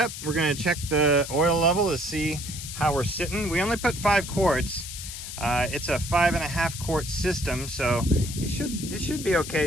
we're gonna check the oil level to see how we're sitting. We only put 5 quarts. It's a 5.5 quart system, so it should be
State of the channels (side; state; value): left; noise; hiss, 9 dB below the sound